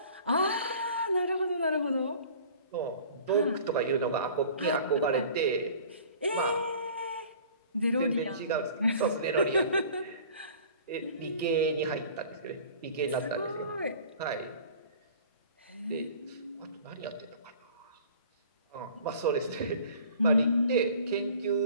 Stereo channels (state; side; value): inverted; both; correlation -0.47